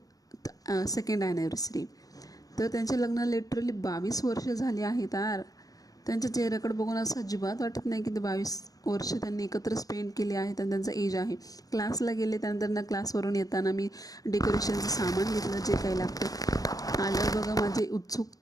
सेकंड ॲनिव्हर्सरी. तर त्यांचे लग्न लिटरली 22 वर्ष झाली आहेत यार. त्यांच्या चेहऱ्याकडे बघून असं अजिबात वाटत नाही की ते 22 वर्ष त्यांनी एकत्र स्पेंड केले आहेत आणि त्यांचा एज आहे. क्लासला गेले, त्यानंतर क्लासवरून येताना मी डेकोरेशनचं सामान घेतलं, जे काही लागतं. आलं बघा माझी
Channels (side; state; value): right; late; 0.18 ms